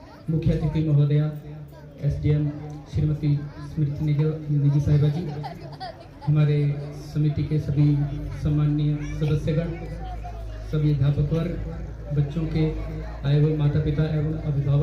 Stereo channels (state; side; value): identical; both; correlation 1.00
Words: मुख्य अतिथि महोदया एसडीएम श्रीमती स्मृति निजी साहिबा जी, हमारे समिति के सभी सम्माननीय सदस्यगण, सभी अध्यापक वर्ग, बच्चों के आए हुए माता पिता एवं